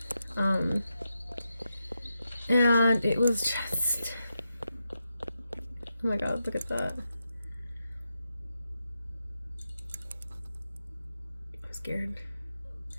And it was just, oh my god, look at that. I'm scared.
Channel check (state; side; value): inverted; both; correlation -0.87